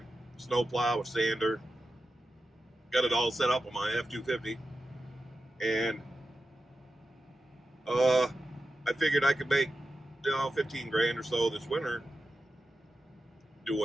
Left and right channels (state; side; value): normal; both; correlation 0.92